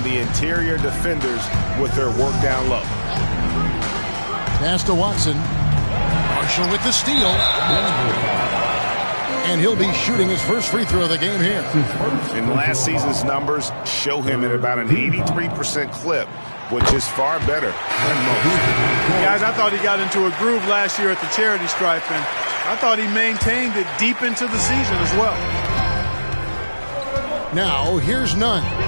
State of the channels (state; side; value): inverted; both; correlation -1.00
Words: the interior defenders with their work down low. Pass to Watson. Marshall with the steal. And he'll be shooting his first free throw of the game here. And last season's numbers show him at about an 83% clip, which is far better than most. Guys, I thought he got into a groove last year at the charity stripe, and I thought he maintained it deep into the season as well. Now, here's Nunn.